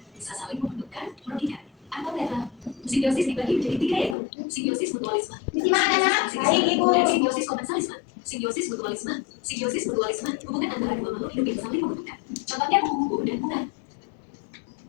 bisa saling menguntungkan, merugikan, atau netral. Simbiosis dibagi menjadi tiga, yaitu simbiosis mutualisme, Disimak anak-anak. Baik, Ibu. dan simbiosis komensalisme. Simbiosis mutualisme, hubungan antara dua makhluk hidup yang saling menguntungkan. Contohnya kupu-kupu dan bunga.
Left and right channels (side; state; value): right; drops out; at 4.2 s